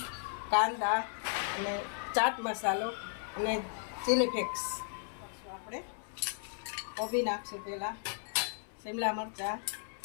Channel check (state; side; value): silent; right; 54 dB below the other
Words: કાંદા અને ચાટ મસાલો અને ચીલી ફ્લેક્સ. આપણે કોબી નાખશું પહેલાં, શિમલા મરચાં,